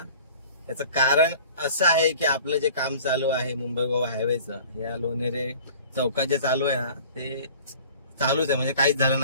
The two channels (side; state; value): both; inverted; correlation -0.46